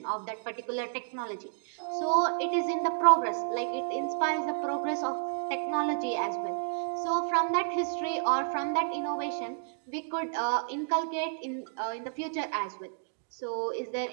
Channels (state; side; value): silent; left; digital silence